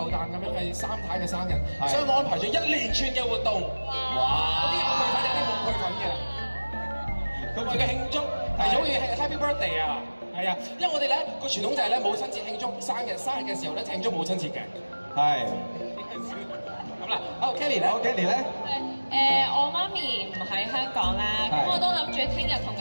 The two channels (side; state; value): both; inverted; correlation -1.00